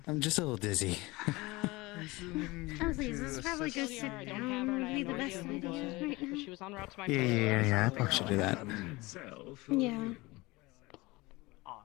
I'm just a little dizzy. Honestly, this is probably go sit down would be the best idea right now. She was on route to my Yeah. I probably should do that. Yeah.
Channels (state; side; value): quieter; right; 22.2 dB